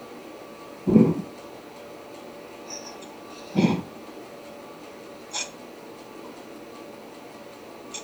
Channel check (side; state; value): both; identical; correlation 1.00